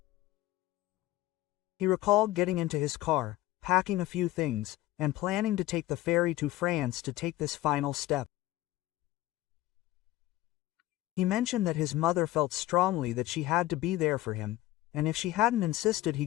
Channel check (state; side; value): quieter; right; 16.3 dB